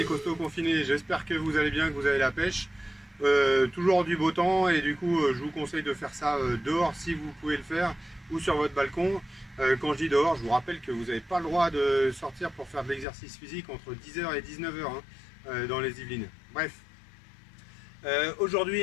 costauds confinés, j'espère que vous allez bien, que vous avez la pêche. Toujours du beau temps et du coup je vous conseille de faire ça dehors si vous pouvez le faire ou sur votre balcon. Quand je dis dehors, je vous rappelle que vous n'avez pas le droit de sortir pour faire de l'exercice physique entre 10h et 19h dans les Yvelines. Bref,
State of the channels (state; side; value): drops out; right; at 13.1 s